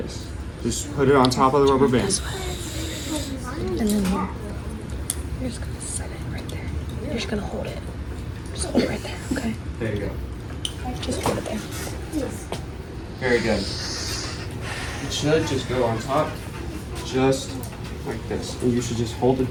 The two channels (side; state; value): both; identical; correlation 1.00